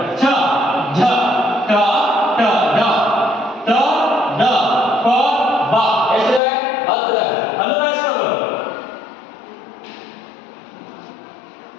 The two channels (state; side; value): drops out; right; at 6.4 s